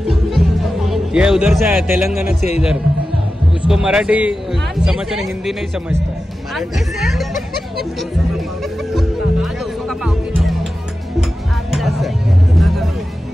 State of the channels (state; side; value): normal; both; correlation 0.93